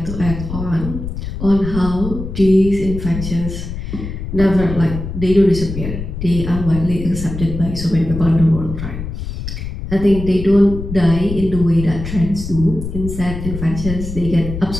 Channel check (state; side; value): noise; left; rumble, 7 dB below the sound